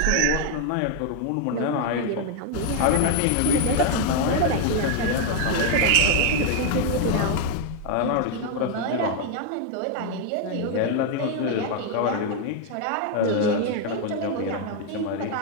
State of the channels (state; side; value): different; both; correlation 0.00